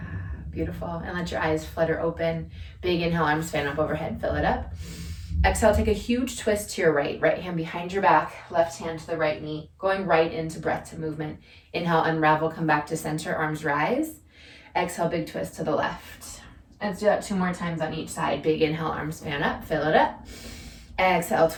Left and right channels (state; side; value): identical; both; correlation 1.00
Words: Beautiful. And let your eyes flutter open. Big inhale, arms fan up overhead, fill it up. Exhale, take a huge twist to your right. Right hand behind your back, left hand to the right knee, going right into breath to movement. Inhale, unravel, come back to center, arms rise. Exhale, big twist to the left. Let's do that 2 more times on each side. Big inhale, arms fan up, fill it up. Exhale,